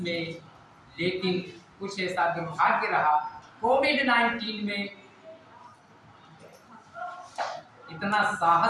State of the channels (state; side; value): identical; both; correlation 1.00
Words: में, लेकिन कुछ ऐसा दुर्भाग्य रहा, कोविड-19 में इतना